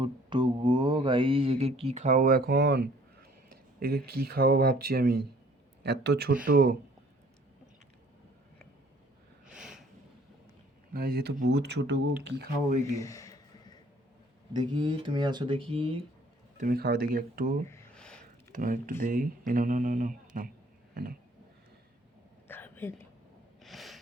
গো গাইস, একে কি খাওয়াবো এখন? একে কি খাওয়াবো ভাবছি আমি, এত ছোট গাইস, এ তো বহুত ছোট গো, কি খাওয়াবো একে? দেখি তুমি আসো, দেখি তুমি খাও দেখি একটু, তোমার একটু দেই। এ নাও নাও নাও নাও নাও, এ নাও। খাবে না।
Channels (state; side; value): normal; both; correlation 0.57